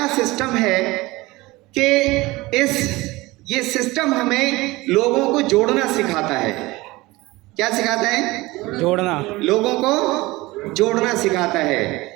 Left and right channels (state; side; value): quieter; left; 20.7 dB